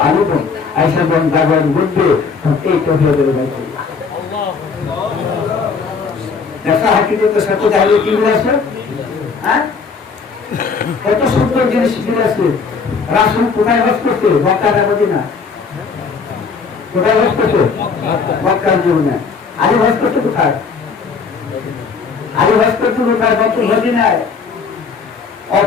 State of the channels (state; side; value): quieter; right; 5.2 dB